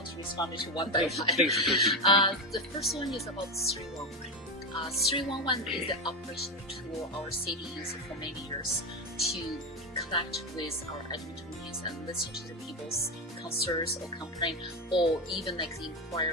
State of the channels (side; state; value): both; normal; correlation 0.13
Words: to respond to one by one. Please. The first one is about 311. 311 is the operational tool our city used for many years to connect with our Edmontonians and listen to the people's concerns or complaint, or even like the